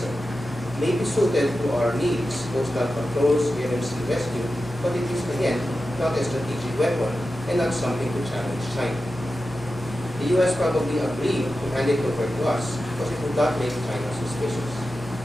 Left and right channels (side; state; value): both; normal; correlation 0.92